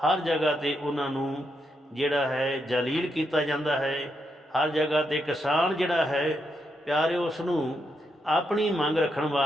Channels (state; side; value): normal; both; correlation 0.81